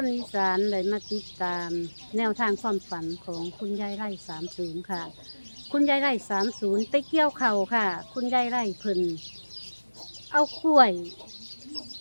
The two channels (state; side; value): inverted; both; correlation -1.00